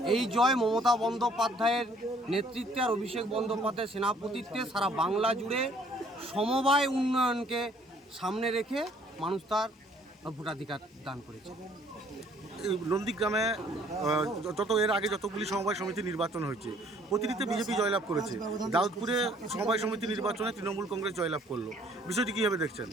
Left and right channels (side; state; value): both; normal; correlation 0.60